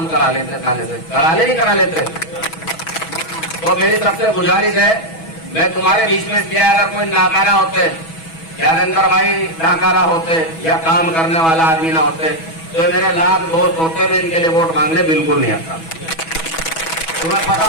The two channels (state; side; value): late; right; 6.2 ms